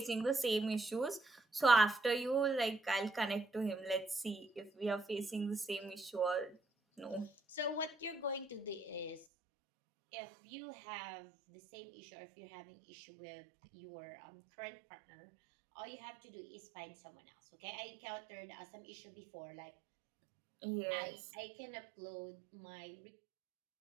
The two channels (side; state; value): left; drops out; at 9.2 s